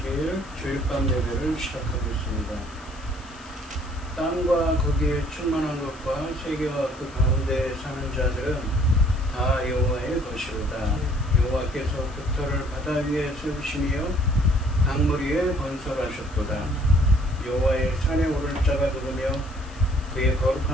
주일밤 예배를 시작하겠습니다. 땅과 거기에 충만한 것과 세계와 그 가운데 사는 자들은 다 여호와의 것이로다. 여호와께서 깃털을 바다 위에 세우시며 강물 위에 건설하셨도다. 여호와의 산에 오를 자가 누구며 그의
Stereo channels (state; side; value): noise; left; hiss, 23 dB below the sound